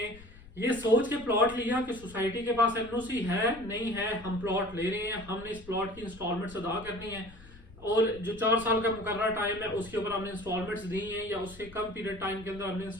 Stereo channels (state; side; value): noise; left; rumble, 20 dB below the sound